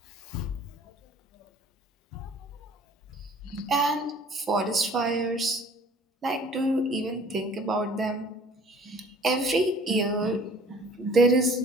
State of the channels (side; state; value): both; normal; correlation 0.51